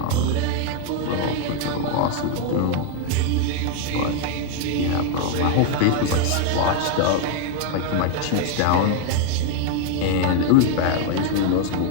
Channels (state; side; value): different; both; correlation 0.00